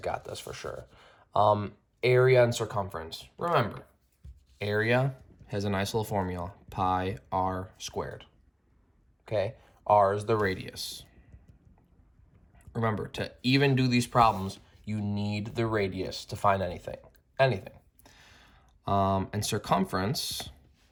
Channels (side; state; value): both; identical; correlation 1.00